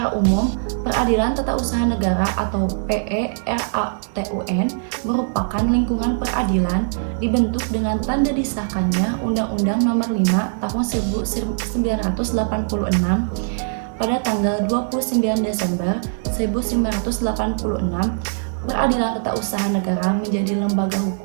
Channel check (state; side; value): silent; left; 56 dB below the other